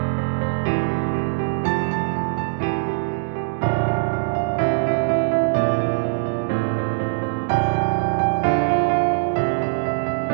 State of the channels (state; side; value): silent; left; digital silence